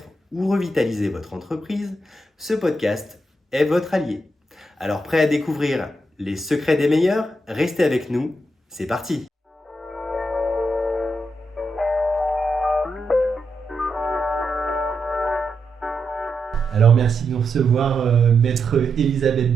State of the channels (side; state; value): both; normal; correlation 0.84